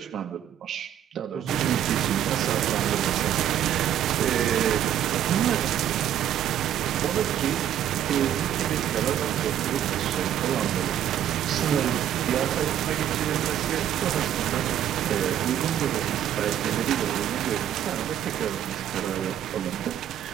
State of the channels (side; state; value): left; quieter; 10.6 dB